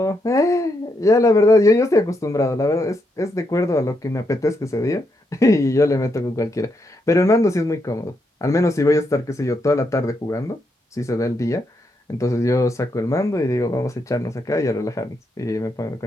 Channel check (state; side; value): normal; both; correlation 0.80